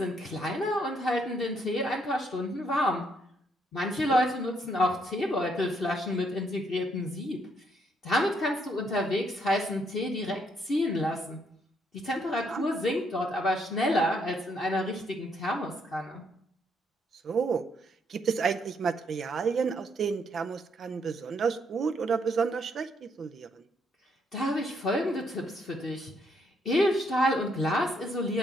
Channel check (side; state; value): both; normal; correlation 0.72